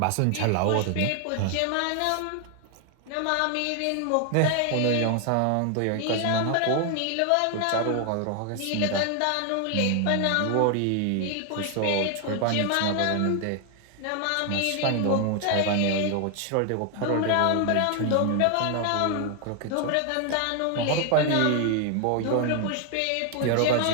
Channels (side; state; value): both; different; correlation 0.00